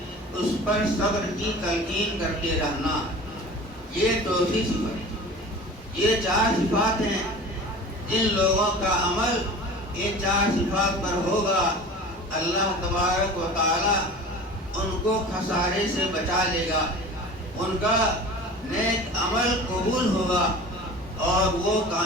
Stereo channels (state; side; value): normal; both; correlation 0.38